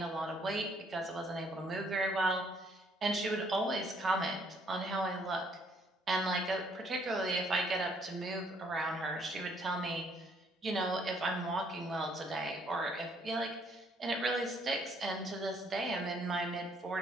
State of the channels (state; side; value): normal; both; correlation 0.66